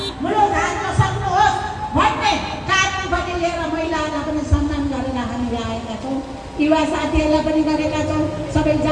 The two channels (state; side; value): identical; both; correlation 1.00